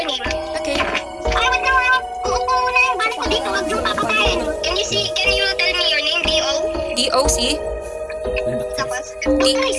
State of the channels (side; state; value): both; identical; correlation 1.00